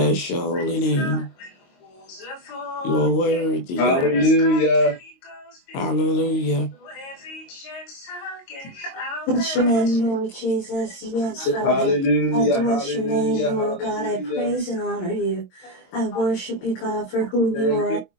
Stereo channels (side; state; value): right; late; 22 ms